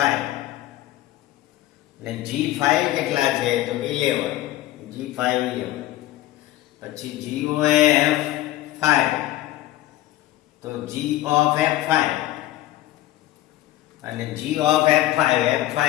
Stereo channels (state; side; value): quieter; right; 15.3 dB